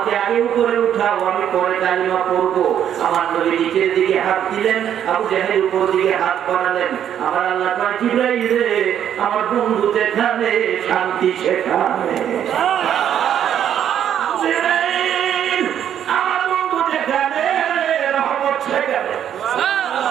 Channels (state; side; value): quieter; left; 9.7 dB